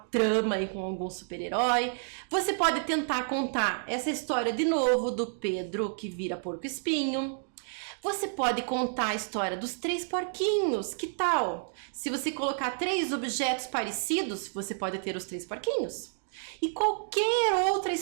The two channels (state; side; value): silent; left; digital silence